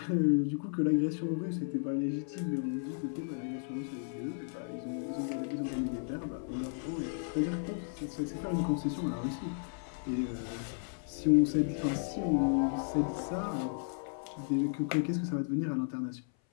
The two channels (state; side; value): silent; right; 55 dB below the other